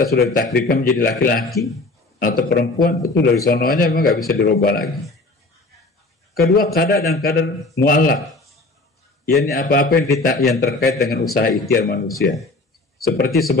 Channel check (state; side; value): quieter; right; 3.1 dB